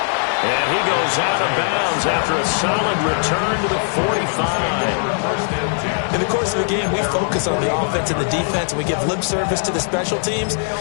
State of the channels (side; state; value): right; silent; 64 dB below the other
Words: And he goes out of bounds after a solid return to the 45. In the course of the game, we focus on the offense and the defense, and we give lip service to the special teams.